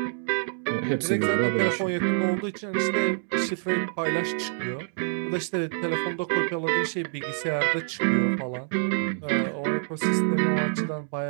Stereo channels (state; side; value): silent; left; digital silence